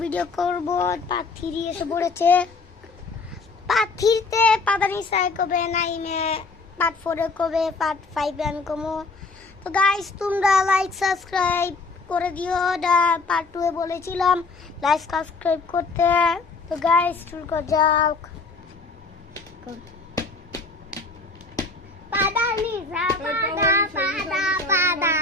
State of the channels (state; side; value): quieter; right; 3.8 dB